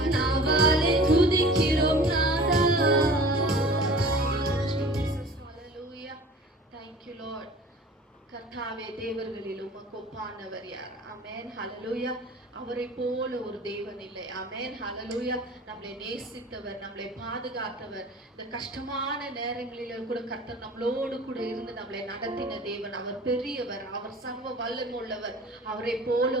நாவாலே துதிக்கிறோம் நாதா. Hallelujah. Thank you Lord. கர்த்தாவே, தேவர்களில் உமக்கு ஒப்பானவர் யார்? ஆமென். ஹalleluya. அவரை போல ஒரு தேவன் இல்லை. ஆமென். ஹalleluya. நம்மளை நேசித்தவர், நம்மளை பாதுகாத்தவர், இந்த கஷ்டமான நேரங்களில கூட கர்த்தர் நம்மளோடு கூட இருந்து நம்மளை நடத்தின தேவன். அவர் பெரியவர், அவர் சர்வ வல்லமை உள்ளவர். அவரை போல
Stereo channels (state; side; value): normal; both; correlation 0.43